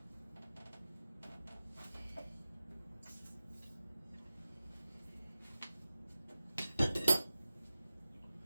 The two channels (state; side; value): inverted; both; correlation -0.94